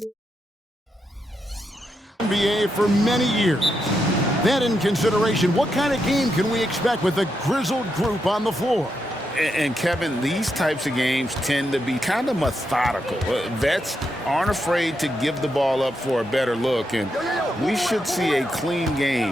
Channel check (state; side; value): normal; both; correlation 0.83